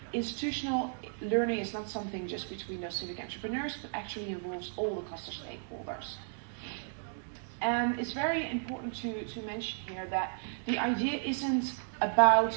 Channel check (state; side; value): silent; left; digital silence